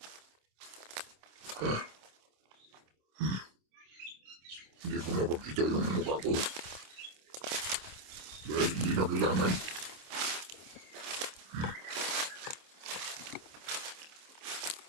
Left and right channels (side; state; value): left; late; 26 ms